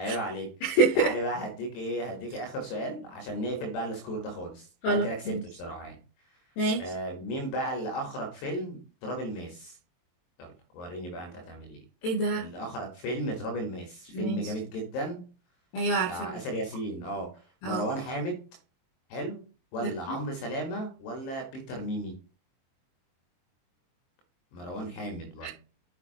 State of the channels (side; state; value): right; late; 23 ms